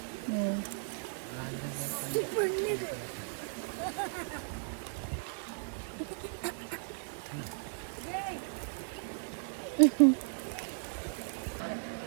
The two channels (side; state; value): left; silent; digital silence